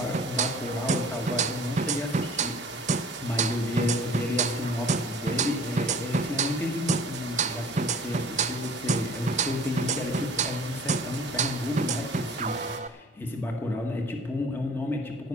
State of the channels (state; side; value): normal; both; correlation 0.48